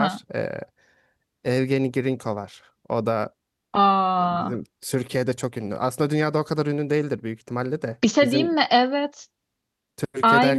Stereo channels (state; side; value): identical; both; correlation 1.00